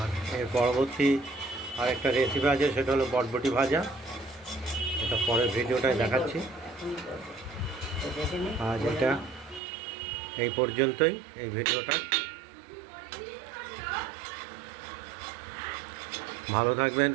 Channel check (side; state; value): left; drops out; at 9.6 s